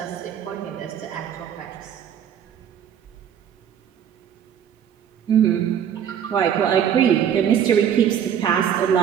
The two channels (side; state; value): left; quieter; 9.0 dB